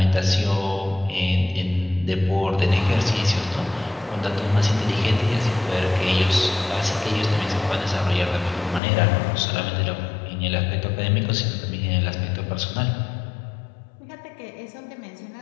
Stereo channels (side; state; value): right; drops out; at 8.8 s